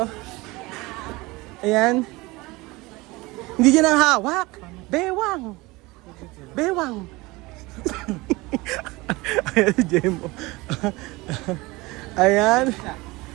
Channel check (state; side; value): quieter; left; 22.3 dB